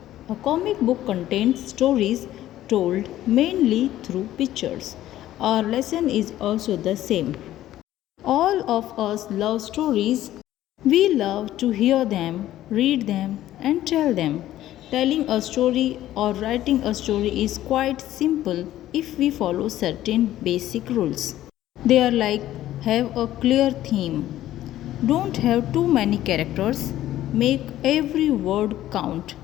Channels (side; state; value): right; quieter; 13.6 dB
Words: A comic book contains stories told mainly through pictures. Our lesson is also the same. All of us love stories. We love to hear them, read them, and tell them. Telling a story or writing a story is quite simple if we follow certain basic rules. They are like have a clear theme, don't have too many characters, make every word count,